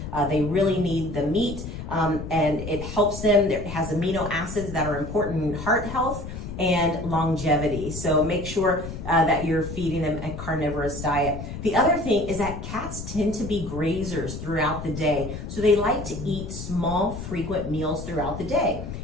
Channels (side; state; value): left; noise; rumble, 8 dB below the sound